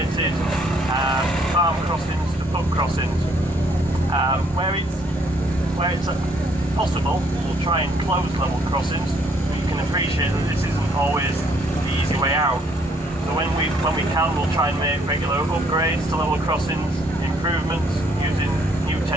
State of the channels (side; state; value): both; normal; correlation 0.66